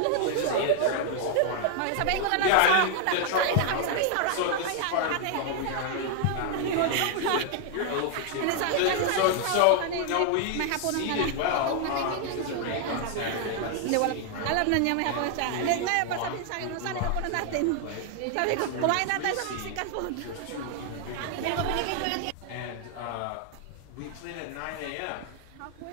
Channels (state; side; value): different; both; correlation 0.00